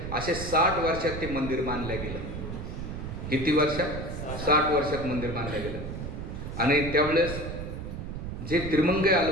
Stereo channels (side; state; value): right; noise; rumble, 7 dB below the sound